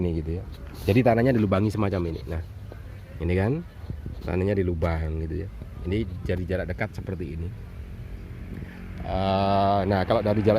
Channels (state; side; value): identical; both; correlation 1.00